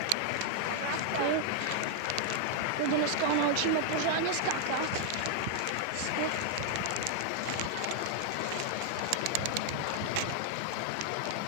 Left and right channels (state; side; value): different; both; correlation 0.00